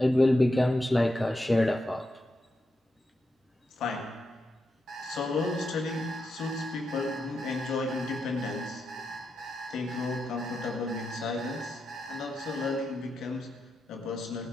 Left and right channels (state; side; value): normal; both; correlation 0.86